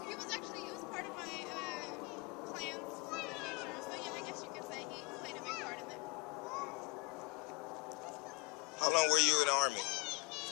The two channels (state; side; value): quieter; right; 25.3 dB